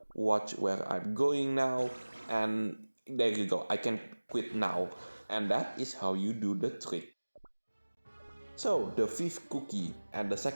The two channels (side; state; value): both; inverted; correlation -1.00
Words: watch where I'm going now, and there you go. I can quit now, and that is how you do the trick. So the fifth cookie and the